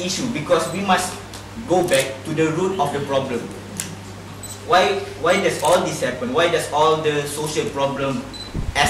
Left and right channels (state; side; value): identical; both; correlation 1.00